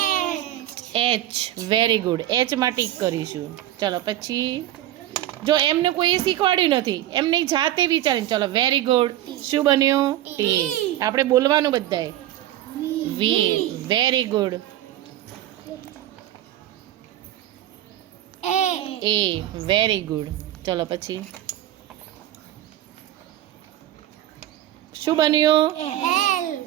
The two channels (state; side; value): quieter; left; 13.4 dB